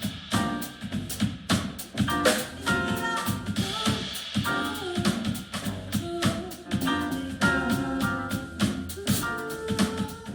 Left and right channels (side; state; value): both; identical; correlation 1.00